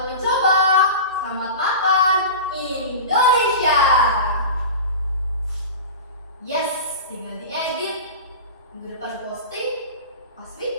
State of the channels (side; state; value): both; inverted; correlation -0.30